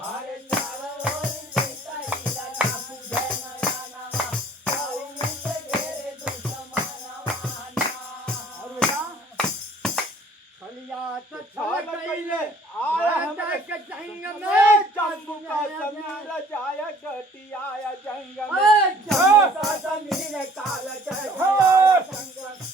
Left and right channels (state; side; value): normal; both; correlation 0.55